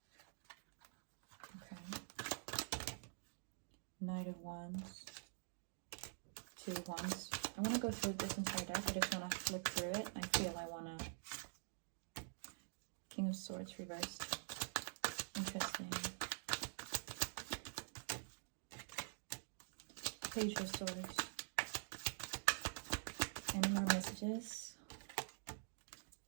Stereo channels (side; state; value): left; silent; digital silence